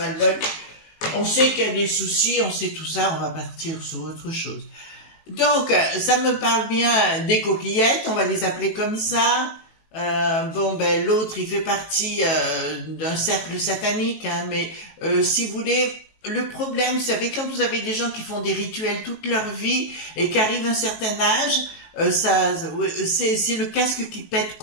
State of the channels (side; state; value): right; late; 19 ms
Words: On sait qu'il y a des soucis, on sait tout ça, on va partir sur autre chose. Donc, ça me parle bien des coquillettes, on va les appeler comme ça. Bon, ben, l'autre, il fait partie d'un cercle satanique, hein, mais si vous voulez... Le problème, vous savez, quand vous avez des gens qui font des rituels toute leur vie et qui arrivent à un certain âge, c'est le casque qui pète